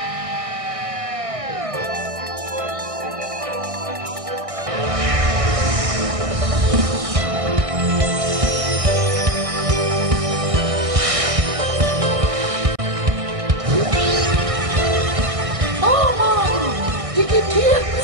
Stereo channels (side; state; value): left; late; 1.6 ms